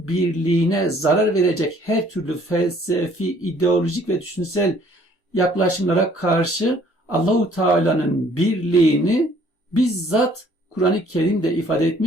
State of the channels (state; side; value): normal; both; correlation 0.59